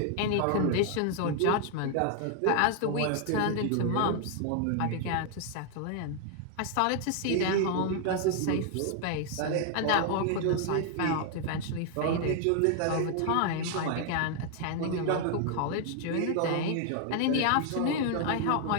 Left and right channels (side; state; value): both; different; correlation 0.00